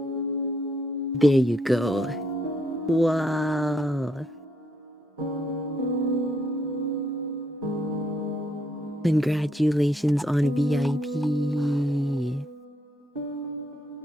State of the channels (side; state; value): both; normal; correlation 0.73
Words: There you go. Wow! Congratulations on VIP.